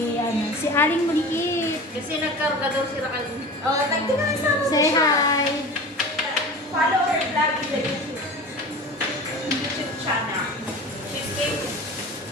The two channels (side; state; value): both; normal; correlation 0.35